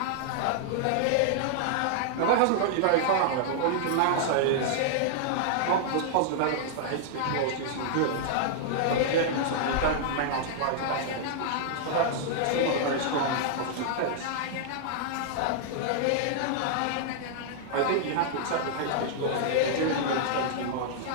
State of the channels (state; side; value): different; both; correlation -0.01